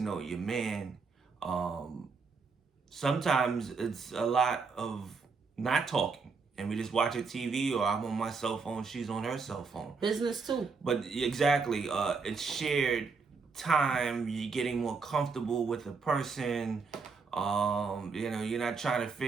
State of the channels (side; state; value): left; quieter; 4.8 dB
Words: your man. Sometimes it's a lot of not talking, and we just watch a TV, or I'm on my cell phone, she's on her cell phone. Business too. But exactly, it's shared time. You're getting more comfortable with the person. You know, you're not trying to